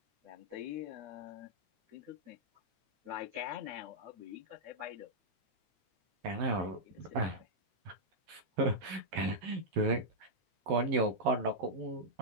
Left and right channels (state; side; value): late; left; 11 ms